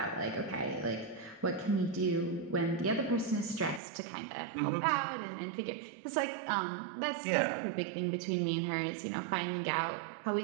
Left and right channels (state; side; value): drops out; left; at 3.8 s